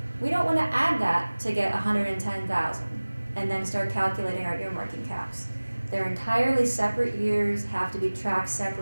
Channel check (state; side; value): inverted; both; correlation -1.00